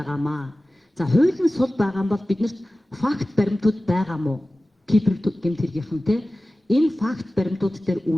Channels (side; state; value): both; normal; correlation 0.96